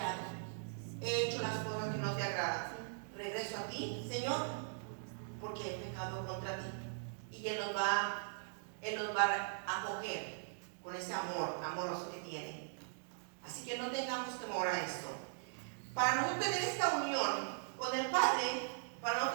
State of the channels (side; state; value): left; silent; digital silence